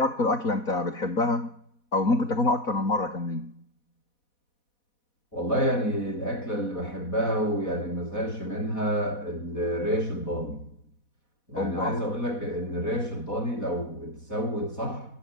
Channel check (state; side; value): late; right; 4.1 ms